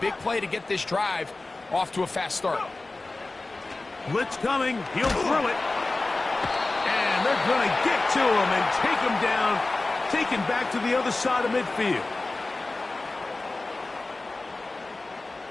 big play to get this drive off to a fast start. Blitz coming. He'll throw it. And they're going to get to him and take him down, taken back to the other side of midfield.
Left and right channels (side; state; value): right; quieter; 3.2 dB